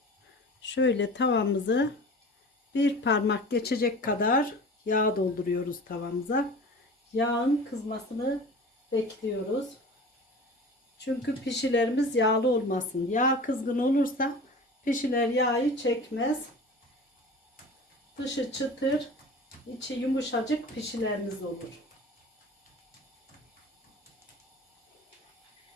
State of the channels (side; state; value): both; normal; correlation 0.38